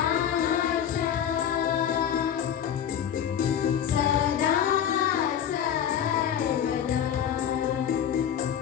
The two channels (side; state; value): right; quieter; 9.2 dB